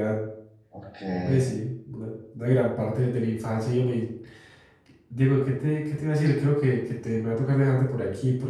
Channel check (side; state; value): both; identical; correlation 1.00